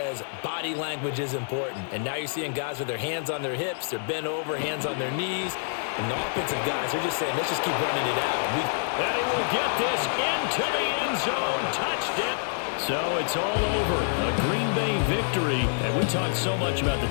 body language is important. And now you're seeing guys with their hands on their hips, they're bent over, hands on their knees. And the offensive guys, they're just saying, let's just keep running it out. And he will get this into the end zone. So it's all over. A Green Bay victory. And we talked so much about the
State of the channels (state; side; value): silent; right; digital silence